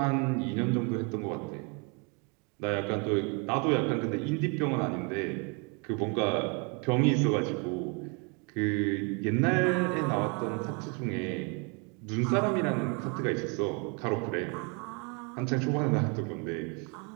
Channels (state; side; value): quieter; left; 33.7 dB